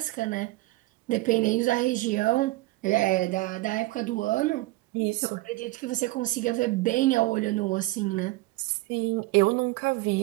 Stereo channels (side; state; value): left; quieter; 19.5 dB